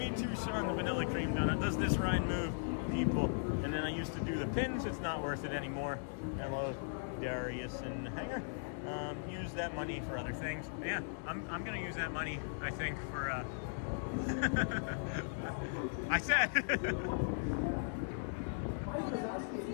too, Sean, the vanilla cream donut does this ride move, people. And then I used to do the pins. It's not worth it anymore. Hello, Darius and Hanger. Use that money for other things. Yeah, I'm gonna use that money, I think, for I said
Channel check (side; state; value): right; silent; digital silence